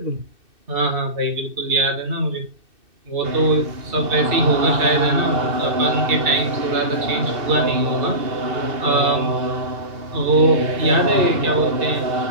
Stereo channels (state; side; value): late; left; 2.6 ms